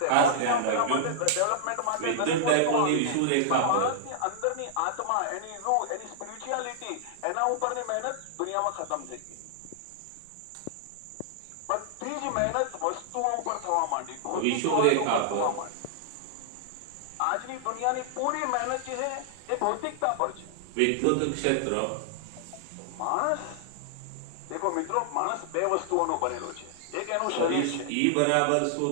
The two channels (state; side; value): different; both; correlation -0.01